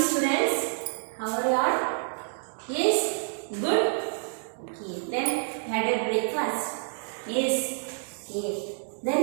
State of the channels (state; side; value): silent; left; digital silence